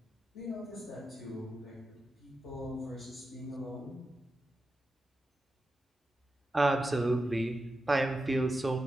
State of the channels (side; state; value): both; normal; correlation 0.90